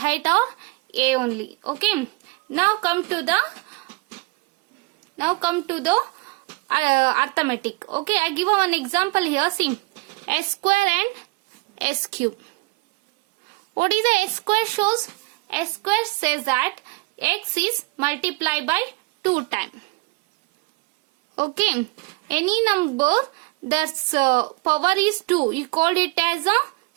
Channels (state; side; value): quieter; left; 24.8 dB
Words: are A only. Okay. Now come to the arithmetic. Okay, I give one example here. See, s square and s cube. What is the s square shows? S square says that x is multiplied by 2 times. Okay, any number that's power is 2, you call it as a